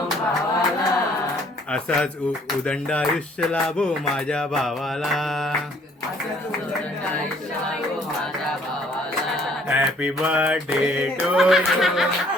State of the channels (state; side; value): normal; both; correlation 0.60